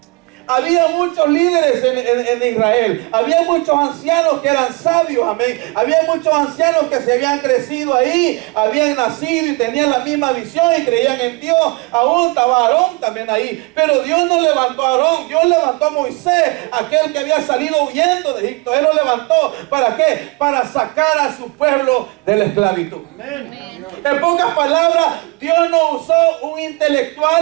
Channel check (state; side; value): quieter; left; 25.5 dB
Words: Había muchos líderes en Israel. Había muchos ancianos que eran sabios, amén. Había muchos ancianos que se habían crecido ahí, habían nacido y tenían la misma visión y creían en Dios. Aún estaba Aarón también ahí. Pero Dios no levantó a Aarón, Dios levantó a Moisés, aquel que había salido huyendo de Egipto. Él lo levantó, ¿para qué? Para sacar a su pueblo de la esclavitud. Amén. En pocas palabras, Dios no usó un